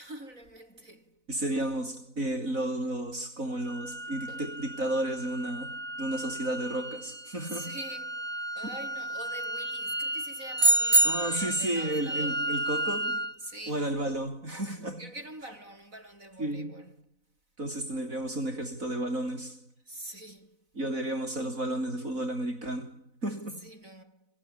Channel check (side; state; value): left; late; 4.0 ms